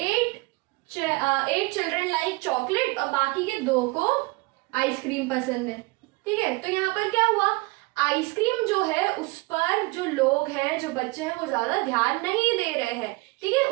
चिल्ड्रन लाइक चॉकलेट और बाकी के 2 को आइसक्रीम पसंद है, ठीक है? तो यहाँ पर क्या हुआ? आइसक्रीम जो है उस पर जो लोग हैं, जो बच्चे हैं, वो ज्यादा ध्यान नहीं दे रहे हैं, ठीक है?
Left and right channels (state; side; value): quieter; left; 25.3 dB